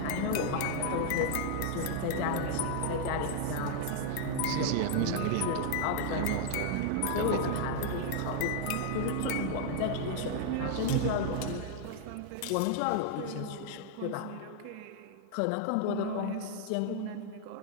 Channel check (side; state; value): both; different; correlation -0.01